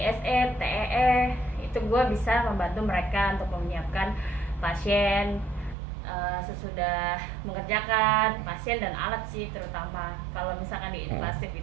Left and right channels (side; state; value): left; drops out; at 5.8 s